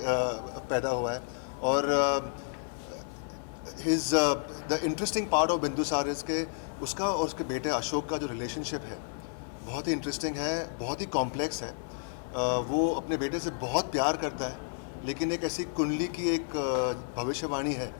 पैदा हुआ है, और the interesting part of Bindusara is के उसका और उसके बेटे अशोक का जो रिलेशनशिप है बहुत ही इंटरेस्टिंग है, बहुत ही कॉम्प्लेक्स है। वो अपने बेटे से बहुत प्यार करता है, लेकिन एक ऐसी कुंडली की एक भविष्यवाणी है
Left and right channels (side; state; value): right; silent; 57 dB below the other